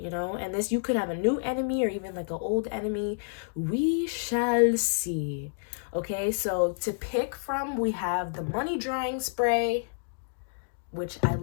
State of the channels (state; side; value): silent; right; digital silence